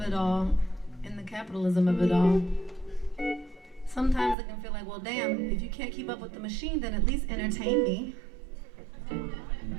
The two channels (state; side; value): drops out; left; at 4.4 s